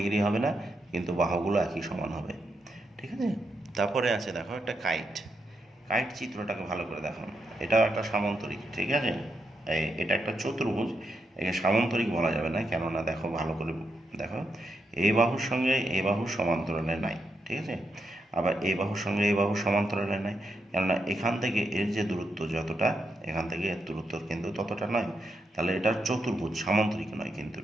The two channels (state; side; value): normal; both; correlation 0.82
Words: হবে না, কিন্তু বাহুগুলো একই সমান হবে। ঠিক আছে, তারপরে আছে দেখো একটা কাইট। কাইট চিত্রটাকে ভালো করে দেখো, এটাও একটা সামান্তরিক। ঠিক আছে, এটা একটা চতুর্ভুজ, একে সামান্তরিক বলা যাবে না, কেননা দেখো ভালো করে দেখো, এই বাহুর সঙ্গে এই বাহুর সমান্তরালে নাই। ঠিক আছে, আবার এই বাহুর সঙ্গে এই বাহুর সমান্তরালে নাই, কেননা এখান থেকে এর যে দূরত্ব যতটা, এখান থেকে এর দূরত্ব কিন্তু ততটা নয়, তাহলে এটা চতুর্ভুজ, সামান্তরিক নয় কিন্তু।